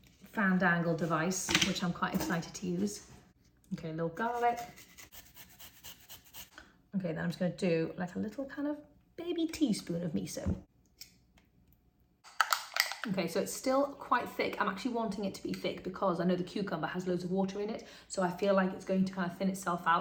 fandangle device, which I'm quite excited to use. Okay, a little garlic. Okay, then I'm just going to do a little kind of baby teaspoon of miso. Okay, so it's still quite thick. I'm actually wanting it to be thick because I know the cucumber has loads of water in it, so I feel like it's going to kind of thin itself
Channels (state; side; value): identical; both; correlation 1.00